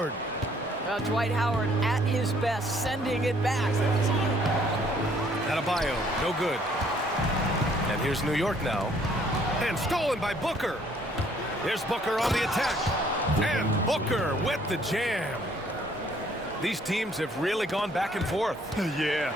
Dwight Howard at his best, sending it back. Adebayo, no good. And here's New York now. And stolen by Booker. Here's Booker on the attack. And Booker with the jam. These teams have really gone back and forth. Yeah,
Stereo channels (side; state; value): both; normal; correlation 0.63